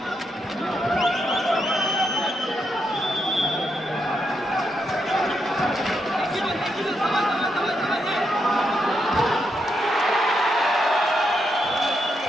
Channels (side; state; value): both; normal; correlation 0.81